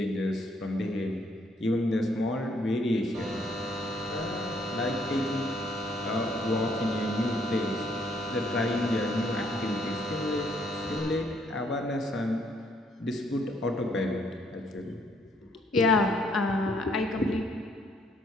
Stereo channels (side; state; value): both; normal; correlation 0.68